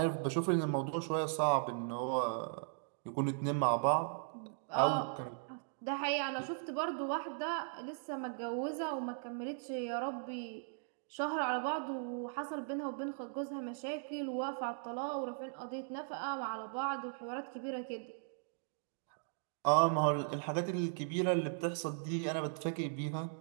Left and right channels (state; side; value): silent; left; digital silence